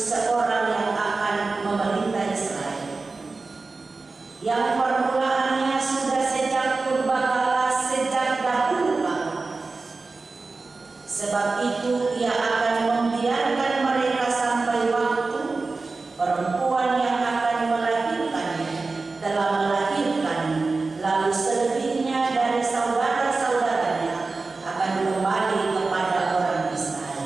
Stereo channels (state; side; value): quieter; left; 3.8 dB